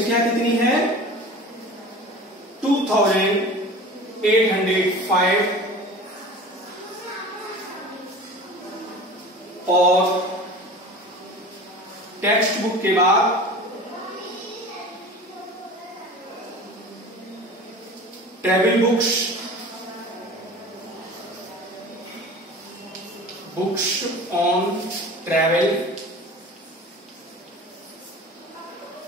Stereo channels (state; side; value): normal; both; correlation 0.38